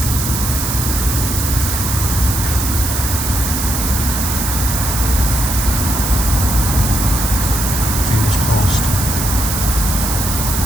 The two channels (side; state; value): right; noise; hiss, 3 dB below the sound